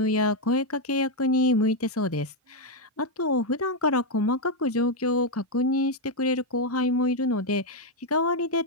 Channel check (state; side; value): normal; both; correlation 0.01